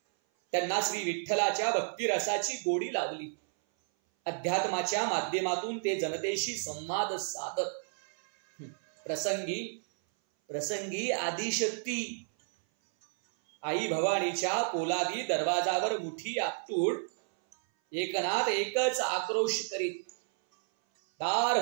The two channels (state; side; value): silent; left; 57 dB below the other